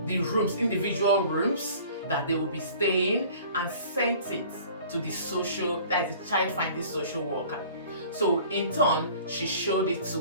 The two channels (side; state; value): both; inverted; correlation -0.48